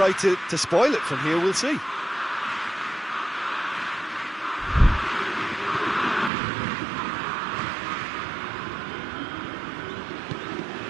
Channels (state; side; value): drops out; left; at 6.3 s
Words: to spoil it from here, we'll see.